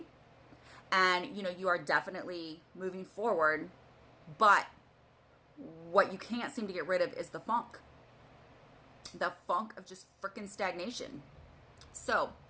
and you are definitely moving forward. But what you can't seem to get rid of is the funk of just freaking stagnation. So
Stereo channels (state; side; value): identical; both; correlation 1.00